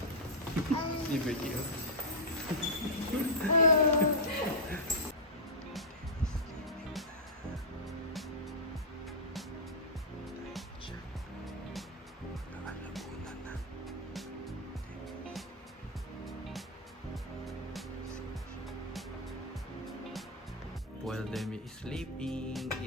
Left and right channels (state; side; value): normal; both; correlation -0.06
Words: Liberty, oh. While Demi is sleeping,